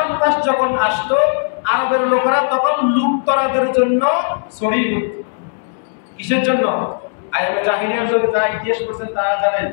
মাস যখন আসতো আরবের লোকেরা তখন লুটতরাদের জন্য ছড়িয়ে পড়ত। কিসের জন্য? আইয়ুবে জাহিলিয়ার যুগে যারা ইতিহাস পড়ছেন তারা জানেন,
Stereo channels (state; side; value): silent; right; digital silence